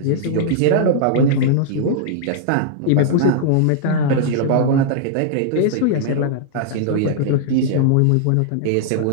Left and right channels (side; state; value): both; different; correlation -0.01